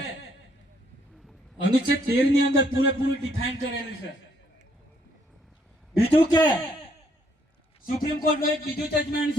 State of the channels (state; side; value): normal; both; correlation 0.69